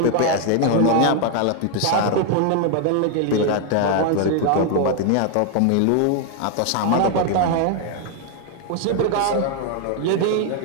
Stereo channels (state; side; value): different; both; correlation 0.00